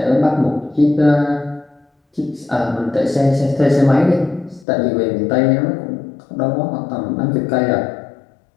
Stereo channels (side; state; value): right; drops out; at 4.7 s